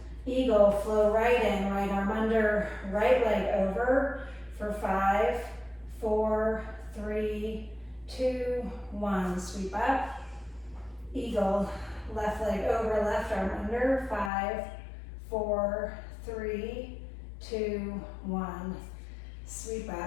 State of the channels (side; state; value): right; drops out; at 14.3 s